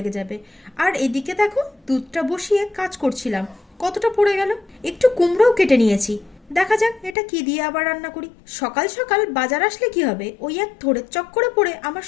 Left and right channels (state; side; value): drops out; right; at 7.2 s